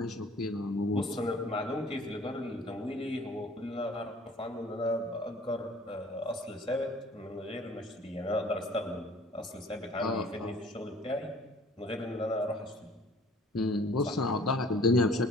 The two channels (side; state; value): both; normal; correlation 0.51